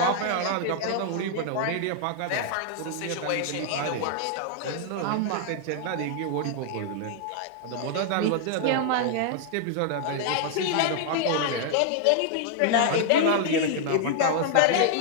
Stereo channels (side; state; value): both; different; correlation 0.00